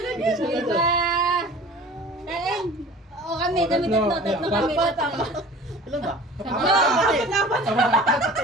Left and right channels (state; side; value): normal; both; correlation 0.43